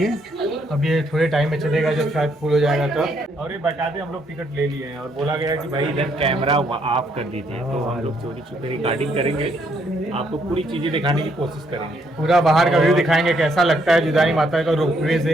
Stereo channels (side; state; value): both; normal; correlation 0.71